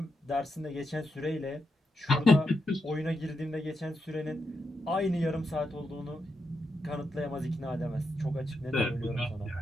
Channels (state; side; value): normal; both; correlation 0.84